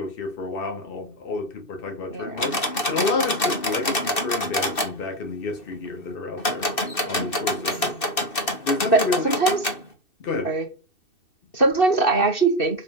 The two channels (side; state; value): right; late; 2.6 ms